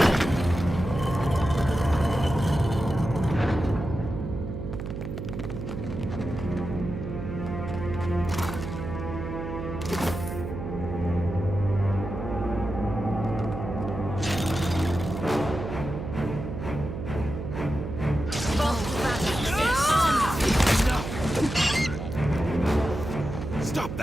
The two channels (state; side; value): noise; right; hum, 6 dB below the sound